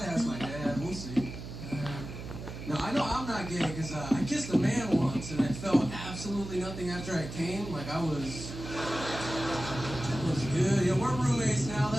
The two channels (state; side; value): noise; right; hum, 9 dB below the sound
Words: ask my dad, we'll see. No, I know I'm not gay, because I kissed a man once, and I felt absolutely nothing after I came. Like, I was good. Yeah, we're roommates now,